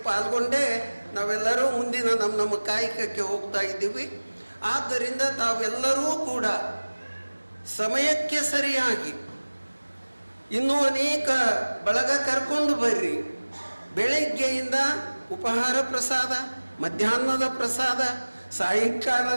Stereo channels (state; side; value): inverted; both; correlation -1.00